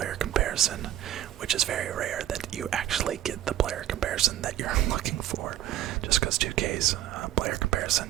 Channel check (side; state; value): left; quieter; 12.7 dB